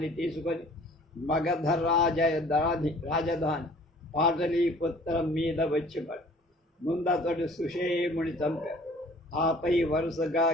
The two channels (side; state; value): both; normal; correlation 0.52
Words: తీసుకొని మగధ రాజధాని పాటలీపుత్రం మీద వచ్చిపడు. ముందతడు సుషేముని చంపాడు. ఆపై వరుసగా